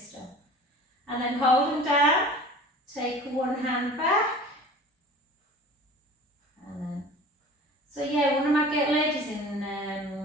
And then hold them down, take one hand back, and then, so yeah, one of my ladies in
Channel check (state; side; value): normal; both; correlation 0.42